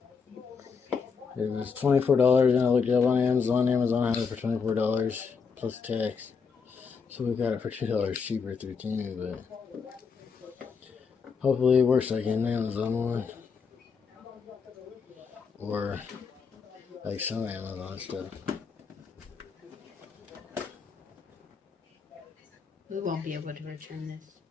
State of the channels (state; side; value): quieter; right; 5.6 dB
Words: It was $24 and I looked it up on Amazon. Amazon had it for $24 plus tax. So we got it for $2 cheaper through Temu, but hopefully it works like an Amazon one. Or like some Amazon stuff. We won't be able to return this.